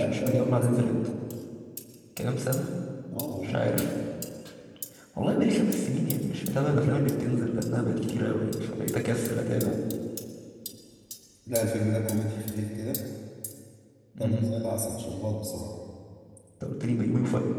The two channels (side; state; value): both; identical; correlation 1.00